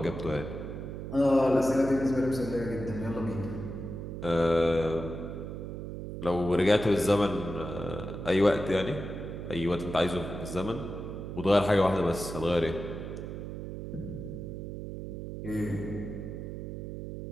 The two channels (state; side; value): noise; right; hum, 7 dB below the sound